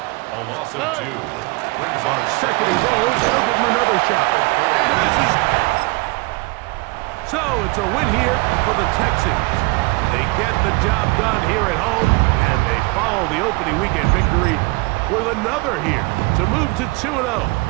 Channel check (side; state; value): left; quieter; 25.6 dB